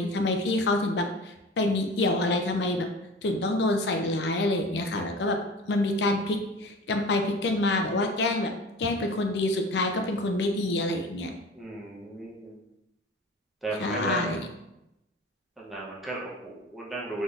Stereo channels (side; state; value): both; normal; correlation 0.38